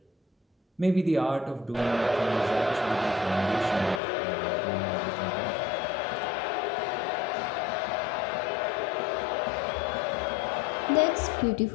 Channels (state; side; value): drops out; right; at 4.0 s